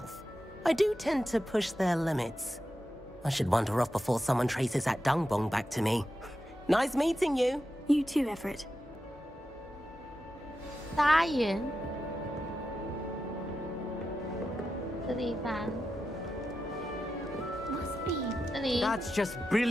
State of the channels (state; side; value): normal; both; correlation 0.90